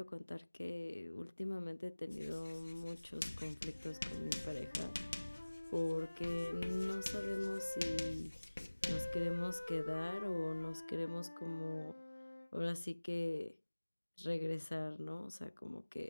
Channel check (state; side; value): inverted; both; correlation -1.00